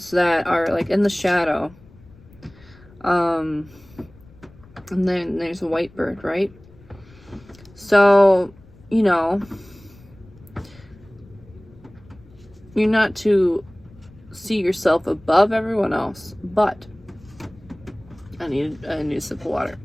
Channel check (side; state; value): left; noise; rumble, 24 dB below the sound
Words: that are like in the shadow. And then there's a white bird, right? So, you know, you're not to see yourself above everyone else, but I need a sip of water.